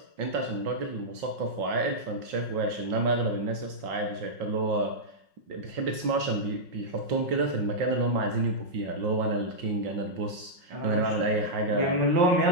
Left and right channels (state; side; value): late; left; 5.5 ms